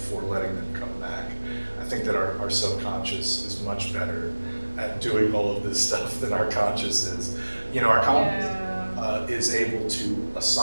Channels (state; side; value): inverted; both; correlation -1.00